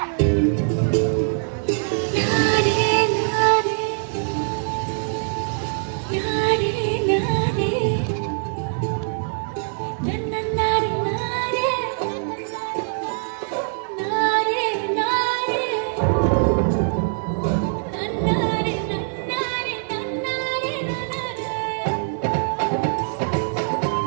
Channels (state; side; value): silent; left; digital silence